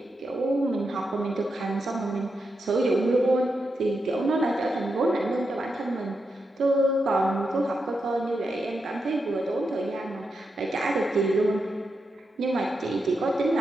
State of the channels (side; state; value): both; normal; correlation 0.86